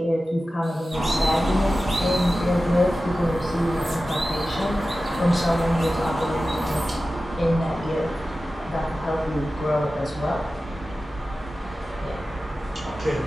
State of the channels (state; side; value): normal; both; correlation 0.94